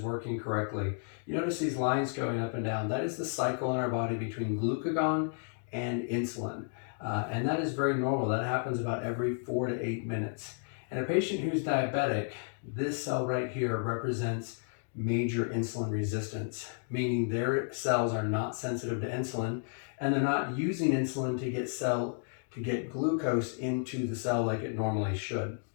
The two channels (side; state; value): right; silent; digital silence